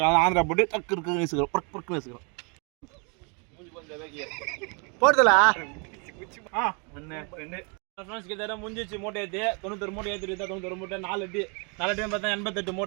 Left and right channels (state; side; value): quieter; left; 34.9 dB